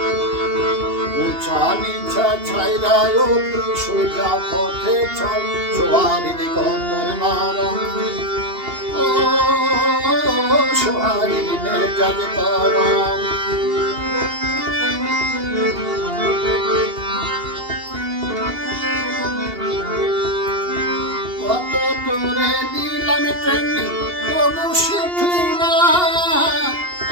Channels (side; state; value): left; late; 2.8 ms